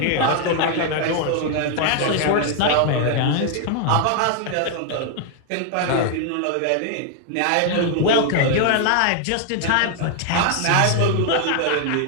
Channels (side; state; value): both; different; correlation 0.00